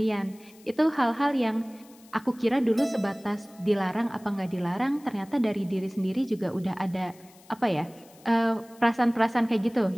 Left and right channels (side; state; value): left; noise; hiss, 26 dB below the sound